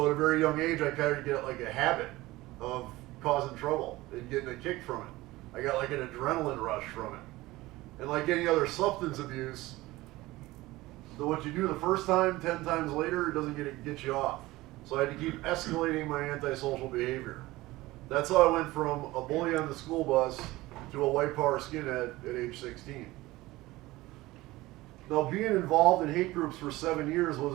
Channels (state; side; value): quieter; left; 18.9 dB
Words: at a very young age, I kind of get like a habit of causing trouble and getting a kick from it. I got like an adrenaline rush from it. And like any other substance abuse, what you do the first time, 10 times later, it doesn't get you off. So I had to keep escalating my antisocial behavior. That's how I went from a bully on the school bus to a white power skinhead at age 16. Now, being involved in hate groups for 7 years